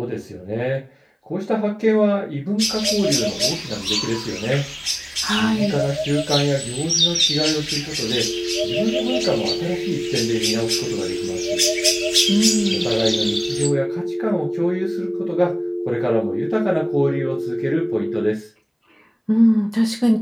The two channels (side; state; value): both; identical; correlation 1.00